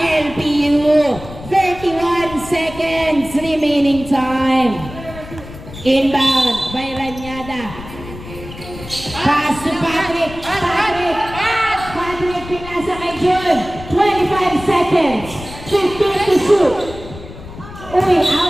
LPU. 31 seconds remaining time. Inbound by Ranyada. Pass to Patrick. Patrick pinasa kay Jun. 25 seconds. 15 to shoot. Uy,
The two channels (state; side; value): noise; left; rumble, 14 dB below the sound